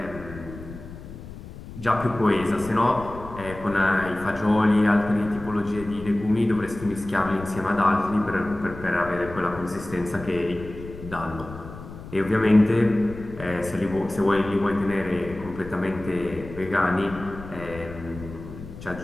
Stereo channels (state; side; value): noise; left; rumble, 14 dB below the sound